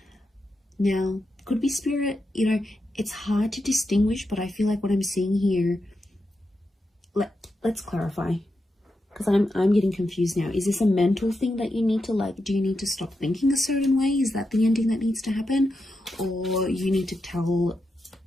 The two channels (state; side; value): normal; both; correlation 0.87